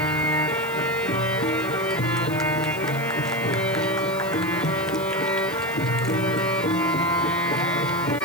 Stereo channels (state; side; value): noise; left; hiss, 17 dB below the sound